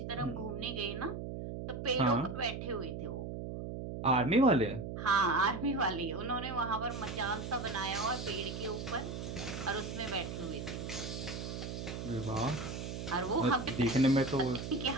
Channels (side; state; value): right; noise; hum, 6 dB below the sound